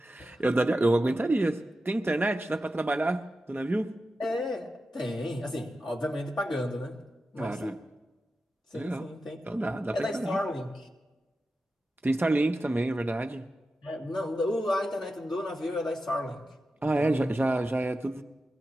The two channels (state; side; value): normal; both; correlation 0.91